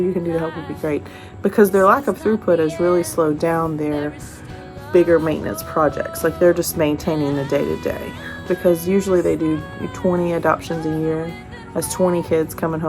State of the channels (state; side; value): identical; both; correlation 1.00